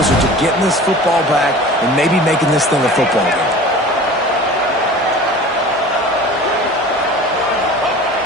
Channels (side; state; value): both; normal; correlation 0.40